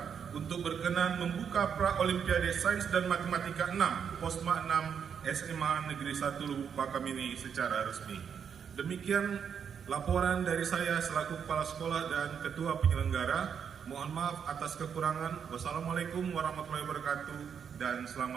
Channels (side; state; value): left; quieter; 7.4 dB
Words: untuk berkenan membuka Pra-Olimpiade Sains dan Matematika 6, Posma 6, SMA Negeri 1 Lubuk Pakam ini secara resmi. Demikian laporan dari saya selaku Kepala Sekolah dan Ketua Penyelenggara. Mohon maaf atas kekurangan. Wassalamualaikum warahmatullahi wabarakatuh dan